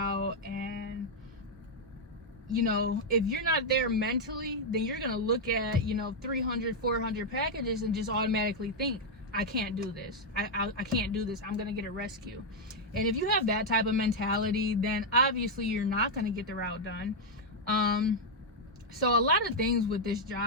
and you know, if you're not there mentally, then you're gonna look at, you know, 300, 400 packages and just automatically think, I can't do this. I can't do this. I'm gonna get a rescue. And if you have that type of mentality, then obviously you're not gonna get the route done. So a lot of things with this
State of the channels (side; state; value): both; normal; correlation -0.01